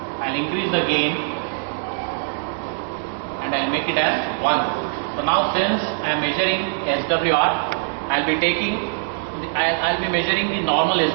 I will increase the gain and I will make it as 1. So now since I am measuring SWR, I will be measuring the normal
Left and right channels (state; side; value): silent; left; digital silence